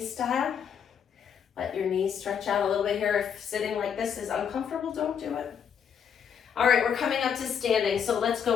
style. Let your knees stretch out a little bit here. If sitting like this is uncomfortable, don't do it. All right, we're coming up to standing. So let's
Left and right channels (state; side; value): quieter; right; 7.6 dB